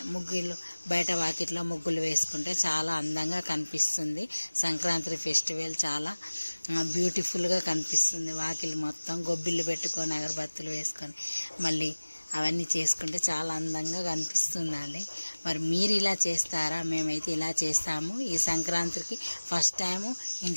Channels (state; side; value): inverted; both; correlation -1.00